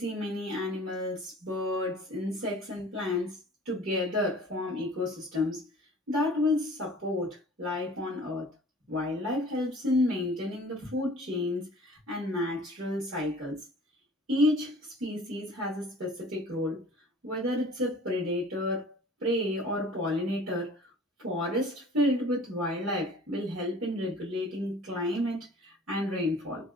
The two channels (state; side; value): normal; both; correlation 0.47